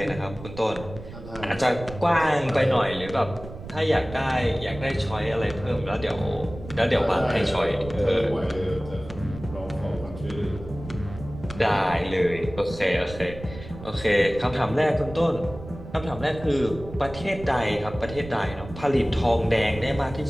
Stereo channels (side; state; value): right; noise; rumble, 13 dB below the sound